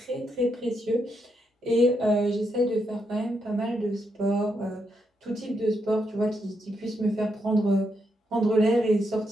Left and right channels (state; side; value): normal; both; correlation 0.80